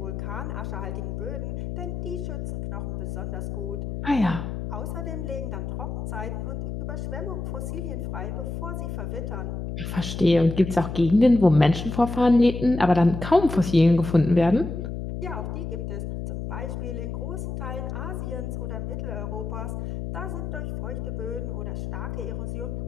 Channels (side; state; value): left; noise; hum, 5 dB below the sound